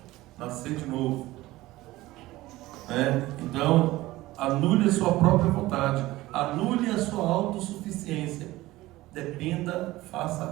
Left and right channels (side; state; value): left; quieter; 17.8 dB